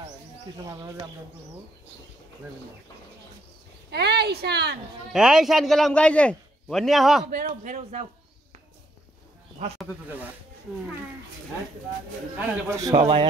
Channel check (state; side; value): normal; both; correlation 0.72